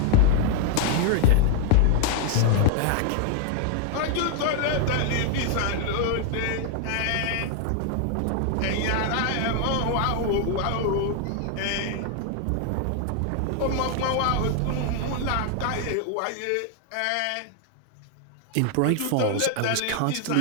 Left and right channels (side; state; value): both; different; correlation 0.00